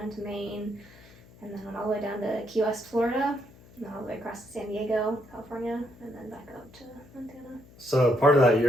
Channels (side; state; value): left; noise; hum, 23 dB below the sound